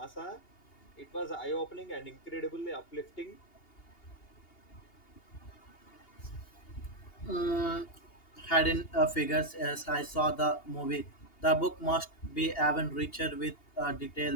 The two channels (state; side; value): late; right; 2.8 ms